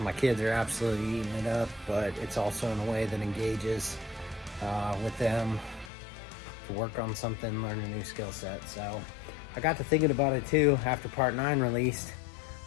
kids are absolutely eating it up, but it's also in a way that engages with them to work on something, learn a new skill set. So I got to thinking about it too after part 9 released.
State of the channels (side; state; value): right; drops out; at 5.9 s